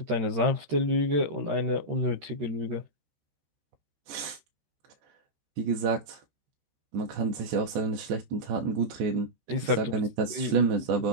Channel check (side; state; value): left; late; 13 ms